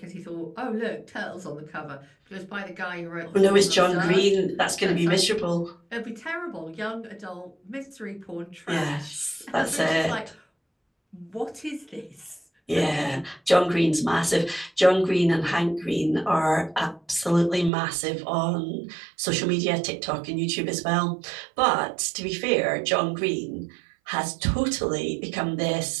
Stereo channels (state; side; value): drops out; left; at 17.7 s